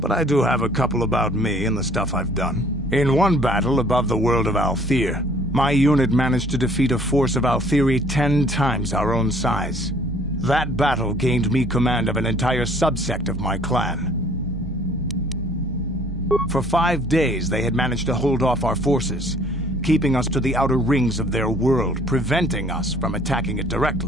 I do have a couple about me and the stuff I've done. In one battle above the world of Althir, my unit managed to defeat a force of Althiri 10 times our own size. That battle gained me command of an entire subsect of my clan. For 5 days, they had managed to hold off our forces, keeping us to the outer rings of their world, preventing us from attacking it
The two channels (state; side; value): normal; both; correlation 0.57